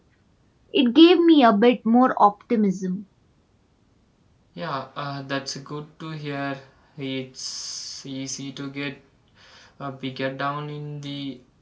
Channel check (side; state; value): both; identical; correlation 1.00